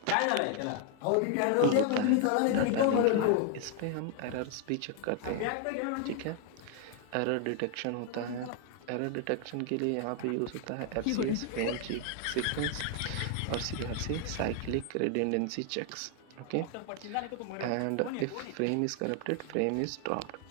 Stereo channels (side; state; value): both; different; correlation 0.00